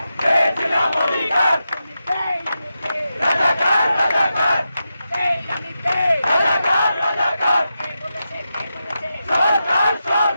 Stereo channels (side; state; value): both; inverted; correlation -0.89